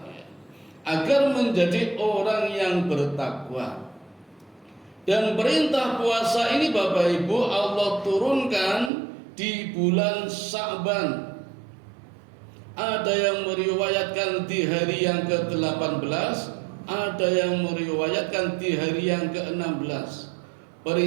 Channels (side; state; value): left; drops out; at 8.9 s